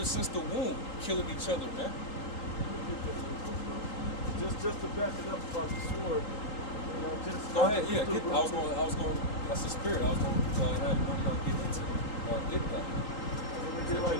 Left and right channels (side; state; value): right; late; 3.8 ms